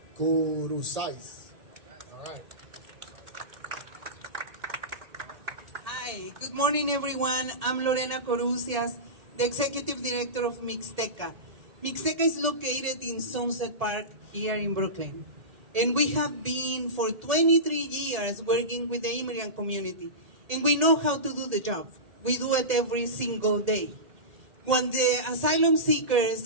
Curuzais. All right. Hi, good morning everyone. I'm Lorena Corucias, the Executive Director of Mixteca. Mixteca is located in Sunset Park here in Brooklyn. And we have been for 23 years working with the immigrant community. And we know how to do the job. We do it every single day. When the asylum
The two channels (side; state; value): left; late; 1.8 ms